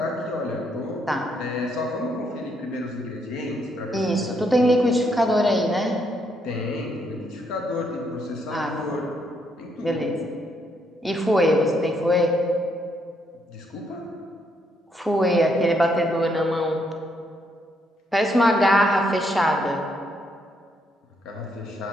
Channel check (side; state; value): both; normal; correlation 0.74